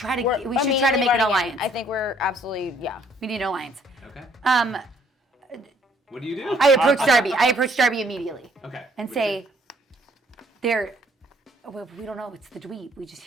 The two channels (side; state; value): both; normal; correlation 0.63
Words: to We're make an immediately running in. alliance. I think we're absolutely, We need an alliance. Okay. What do? I approach Darby. I approach Darby immediately Okay. and say, well, we don't know. It's the dweeb. We just